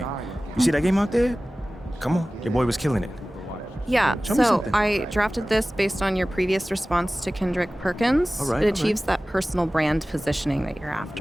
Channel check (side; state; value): both; normal; correlation 0.97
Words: You see that game out there? Come on, your boy was killing it. Yeah, Show me so something. I drafted this based on your previous response to Kendrick Perkins. All right, it all achieves that personal brand positioning that you're